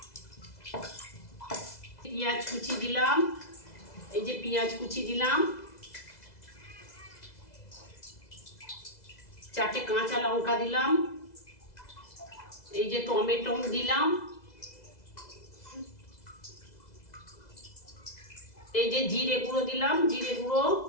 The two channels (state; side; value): late; right; 2.0 ms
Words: পেঁয়াজ কুচি দিলাম, এই যে পেঁয়াজ কুচি দিলাম, 4টে কাঁচা লঙ্কা দিলাম, এই যে টমেটো দিলাম, এই যে জিরে গুঁড়ো দিলাম, জিরে গুঁড়ো,